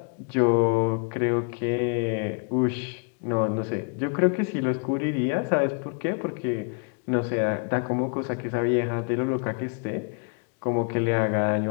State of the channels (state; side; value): quieter; right; 37.2 dB